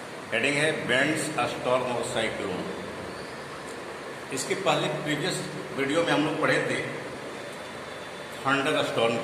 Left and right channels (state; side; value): identical; both; correlation 1.00